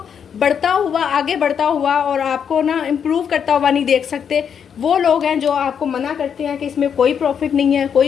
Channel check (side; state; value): right; quieter; 7.6 dB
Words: बढ़ता हुआ, आगे बढ़ता हुआ और आपको ना इम्प्रूव करता हुआ नहीं देख सकते। वो लोग हैं जो आपको मना करते हैं कि इसमें कोई प्रॉफिट नहीं है,